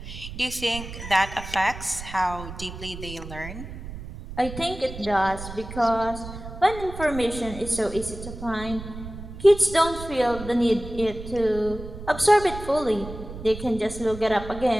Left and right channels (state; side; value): noise; right; rumble, 11 dB below the sound